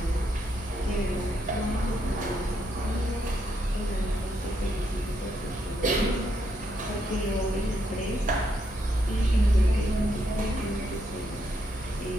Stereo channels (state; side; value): normal; both; correlation 0.77